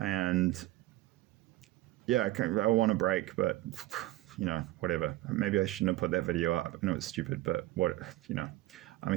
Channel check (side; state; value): left; quieter; 17.1 dB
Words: yeah, I want a break, but whatever. Maybe I shouldn't have put that video up. I know it's stupid, but I'm a